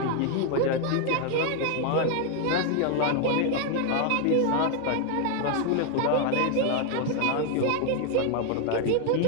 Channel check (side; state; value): both; different; correlation 0.00